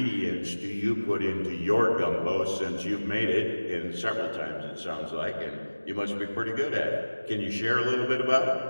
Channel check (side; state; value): both; inverted; correlation -1.00